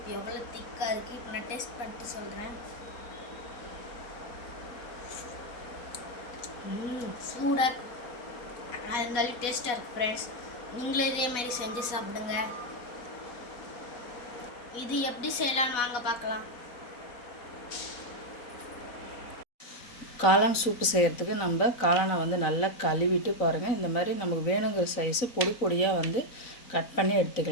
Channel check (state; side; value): late; right; 4.1 ms